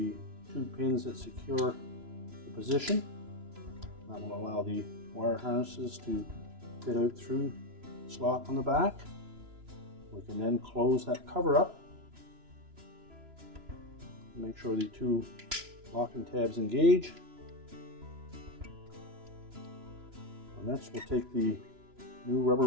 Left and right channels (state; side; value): late; left; 3.0 ms